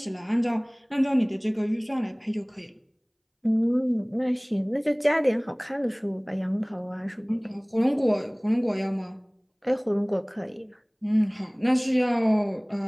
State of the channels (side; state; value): both; identical; correlation 1.00